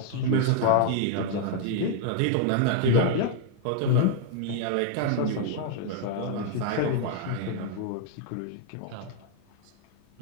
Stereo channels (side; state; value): both; different; correlation -0.01